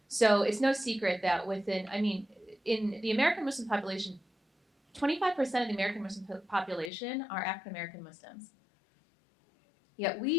So it's no secret that in the American Muslim population, 25% of the American Muslim population are African American Muslims. Yet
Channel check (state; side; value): drops out; right; at 6.9 s